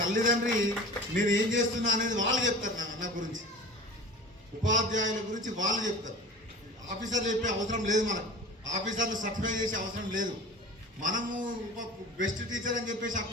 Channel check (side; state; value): both; normal; correlation 0.37